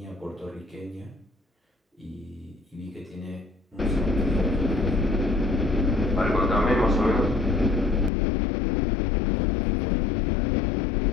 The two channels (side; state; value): right; drops out; at 8.1 s